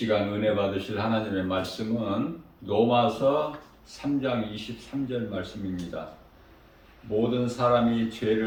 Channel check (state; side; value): identical; both; correlation 1.00